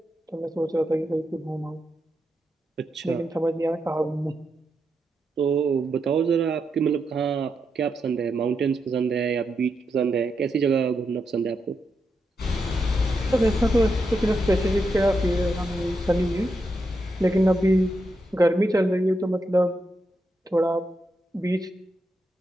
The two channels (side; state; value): both; normal; correlation 0.84